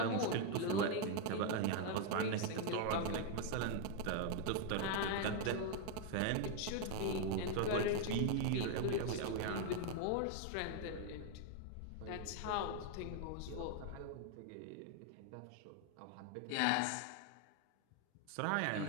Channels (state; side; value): different; both; correlation 0.01